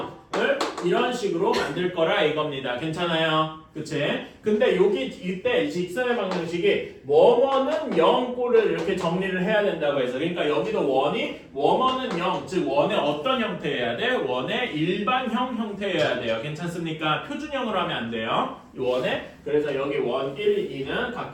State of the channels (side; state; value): both; identical; correlation 1.00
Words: 이런 식으로 만들 거라 이겁니다. 괜찮아요? 그치? 근데 여기 이때 직선의 방정식이 원어는 0꼴을 이렇게 정리를 해야 된다고 해서 그러니까 여기도 원어는 0, 즉 원의 어떤 형태여야 돼? 원의 일반형 형태여야 돼요. 괜찮습니까? 표준형으로 하면 안 돼요. 이 원의 그래서 여기 원 1, 2는